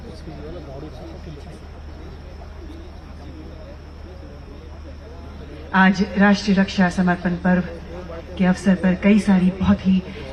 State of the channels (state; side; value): identical; both; correlation 1.00